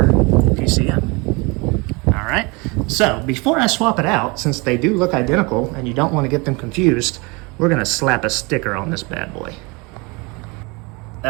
PCM, all right? So before I swap it out, since they do look identical and you don't want to get them confused, we're gonna slap a sticker on this bad boy.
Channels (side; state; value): left; quieter; 27.7 dB